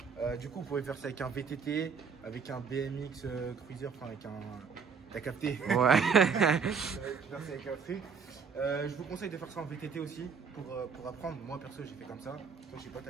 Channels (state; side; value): quieter; left; 5.9 dB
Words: Du coup, vous pouvez faire ça avec un VTT, avec un BMX Cruiser, enfin avec un... T'as capté? Ouais. Tu peux faire ça avec un truc. Je vous conseille de faire ça en VTT aussi pour apprendre. Moi perso, j'ai fait comme ça. Toi, je sais pas,